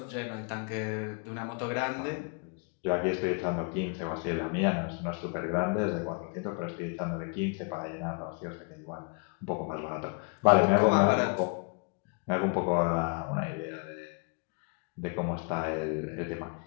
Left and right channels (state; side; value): quieter; right; 36.3 dB